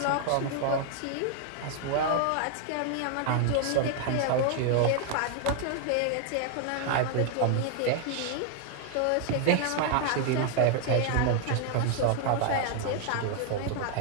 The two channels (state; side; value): different; both; correlation 0.00